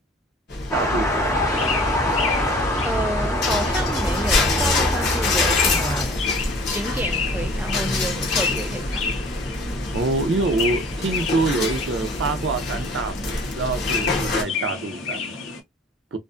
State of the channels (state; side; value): normal; both; correlation 0.49